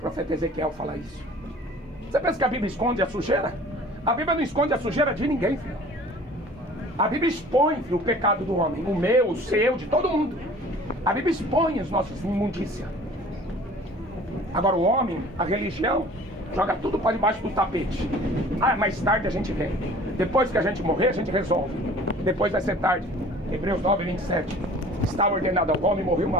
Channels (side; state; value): both; normal; correlation 0.47